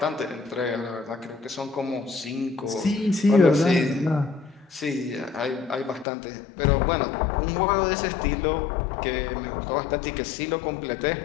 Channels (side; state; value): right; drops out; at 6.1 s